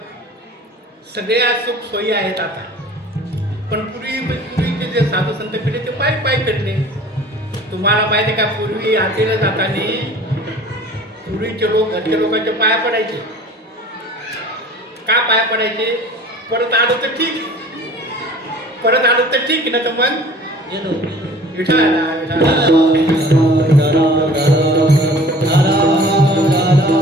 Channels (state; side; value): normal; both; correlation 0.46